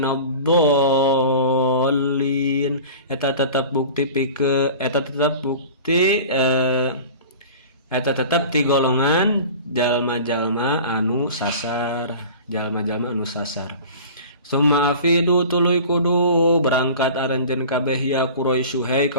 eta tetep ti golongan jalma-jalma anu sasar summa afidu tuluy kudu berangkat aranjeun kabeh ya Quraisy hai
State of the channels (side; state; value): both; inverted; correlation -0.39